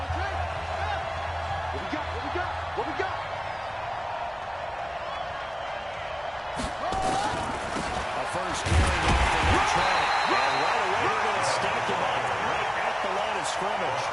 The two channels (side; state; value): both; identical; correlation 1.00